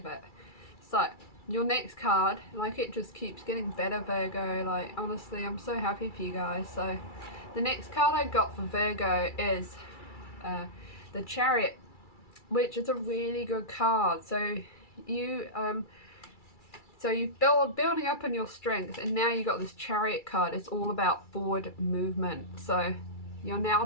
it. So your next card, like, it just keeps getting better, Virgo. Like, honestly, I'm so happy for you guys. So the next card I got for Virgo is the Chariot, which is a really good card. So you're building up on your strength, and now you got this Chariot card. It's all about forward movement. So you're now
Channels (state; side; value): late; right; 2.3 ms